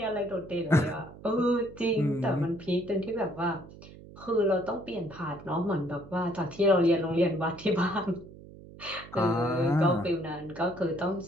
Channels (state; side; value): noise; right; hum, 18 dB below the sound